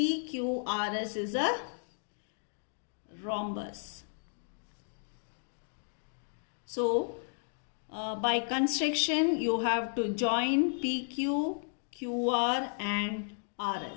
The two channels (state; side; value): silent; right; digital silence